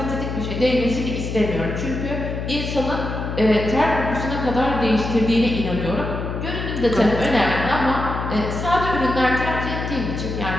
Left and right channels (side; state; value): left; noise; hum, 4 dB below the sound